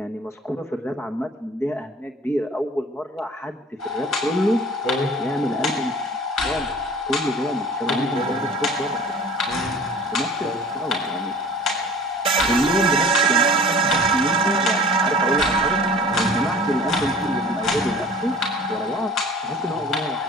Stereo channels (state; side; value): normal; both; correlation 0.45